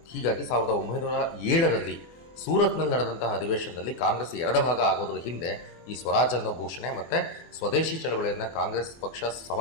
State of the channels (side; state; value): right; late; 24 ms